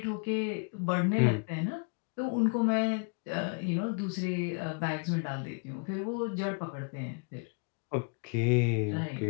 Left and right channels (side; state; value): right; quieter; 36.5 dB